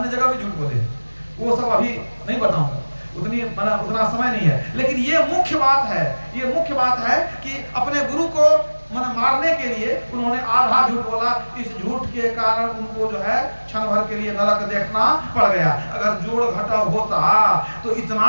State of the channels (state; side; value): inverted; both; correlation -1.00